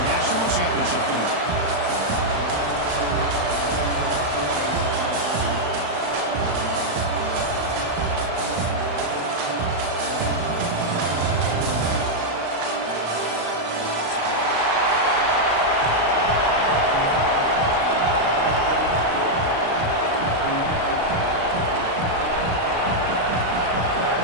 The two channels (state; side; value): late; left; 35 ms